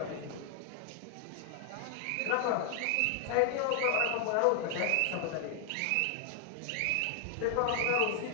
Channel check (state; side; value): different; both; correlation 0.00